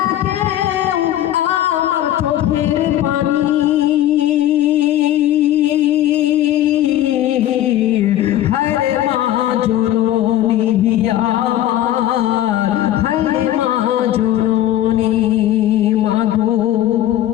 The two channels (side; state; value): right; quieter; 12.9 dB